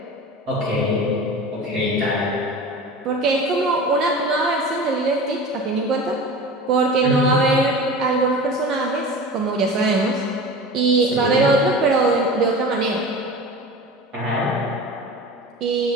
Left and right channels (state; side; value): normal; both; correlation 0.34